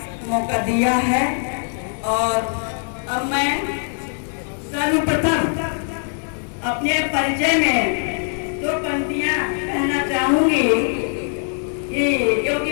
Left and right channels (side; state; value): right; silent; 56 dB below the other